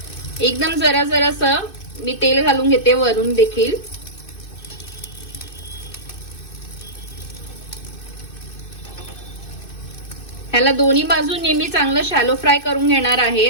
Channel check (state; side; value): late; right; 2.6 ms